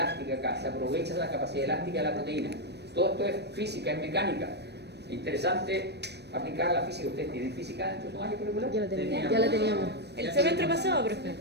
acá, se aprovecha de la capacidad elástica de la proteína. Todo esto es física, es mecánica. Interesante aplicar la física. ¿Ustedes tienen física dentro de su año curricular? Ya la teníamos. El semestre pasado, profe.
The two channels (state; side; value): late; left; 0.49 ms